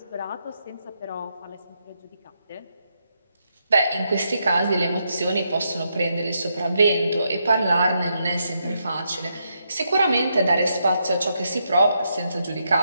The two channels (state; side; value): inverted; both; correlation -0.81